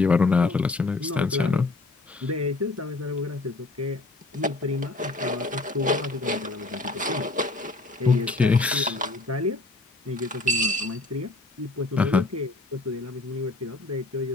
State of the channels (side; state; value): right; quieter; 3.2 dB